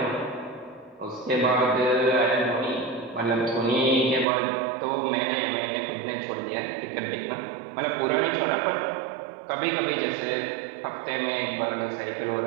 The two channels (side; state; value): left; drops out; at 4.2 s